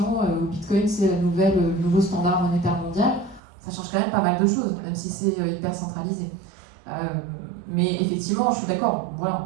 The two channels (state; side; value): drops out; left; at 3.4 s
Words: où Bitcoin c'est le nouveau standard monétaire mondial, ça change quand même pas mal de choses, même si c'est hyper centralisé. Mais effectivement, je suis d'accord, voilà,